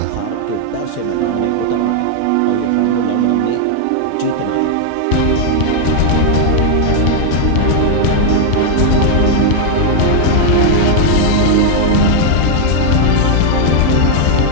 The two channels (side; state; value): both; different; correlation 0.00